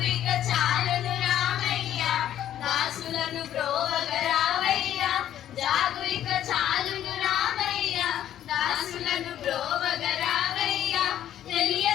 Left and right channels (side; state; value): right; quieter; 11.3 dB